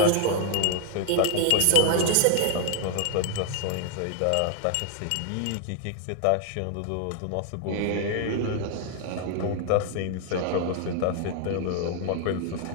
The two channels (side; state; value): both; different; correlation -0.01